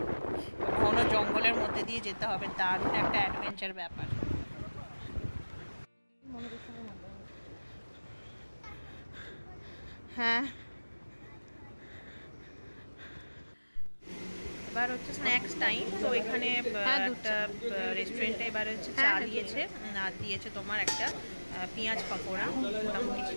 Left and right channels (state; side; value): inverted; both; correlation -1.00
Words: ঘন জঙ্গলের মধ্যে দিয়ে যেতে হবে, দারুণ একটা অ্যাডভেঞ্চার ব্যাপার। হ্যাঁ, এবার হচ্ছে স্ন্যাক্স টাইম। তো এখানে একটা রেস্টুরেন্টে এবার হচ্ছে চা দিয়েছে, আর দিয়েছে তোমার একটা পেঁয়াজ পকোড়া, মোটামুটি